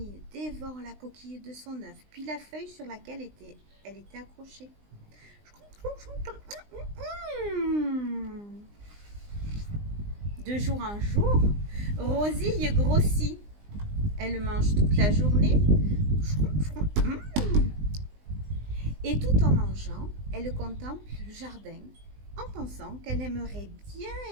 dévore la coquille de son œuf, puis la feuille sur laquelle elle était accrochée. De jour en jour, Rosie grossit. Elle mange toute la journée. Et tout en mangeant, elle contemple le jardin en pensant qu'elle aimerait bien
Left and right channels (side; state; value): left; late; 20 ms